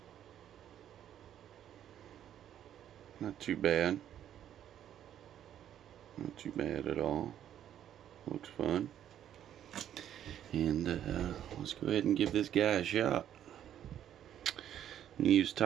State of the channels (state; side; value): quieter; left; 10.5 dB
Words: Not too bad. Not too bad at all. Looks fun. And let's go ahead and give this guy a shot. Use